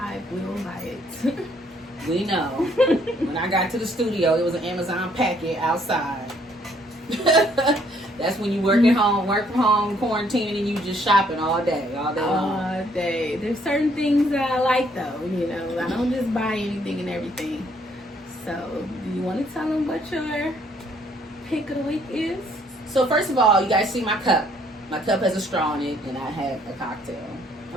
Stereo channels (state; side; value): normal; both; correlation 0.66